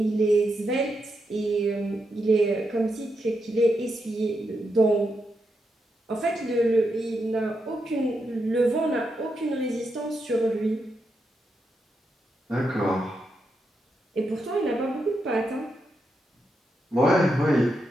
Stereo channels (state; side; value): normal; both; correlation 0.84